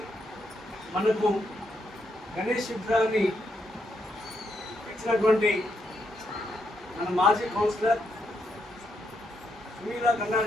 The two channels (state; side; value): normal; both; correlation 0.79